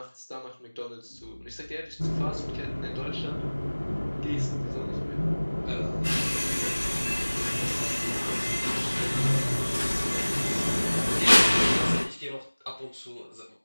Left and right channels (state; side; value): inverted; both; correlation -1.00